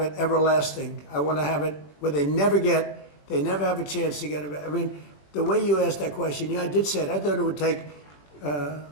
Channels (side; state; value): right; late; 20 ms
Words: everlasting. I want to have it where they never have a chance to get it. I mean, the way you asked that question, yeah, I did say it. I thought it would take